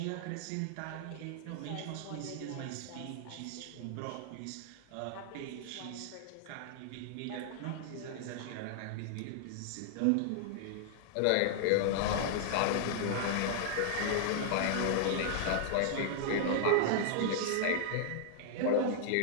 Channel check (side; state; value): both; different; correlation -0.01